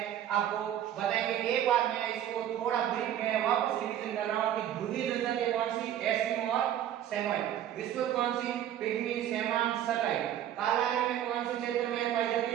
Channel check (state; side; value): quieter; left; 11.1 dB